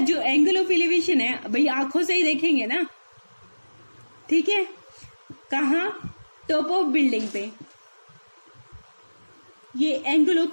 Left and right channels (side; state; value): both; inverted; correlation -1.00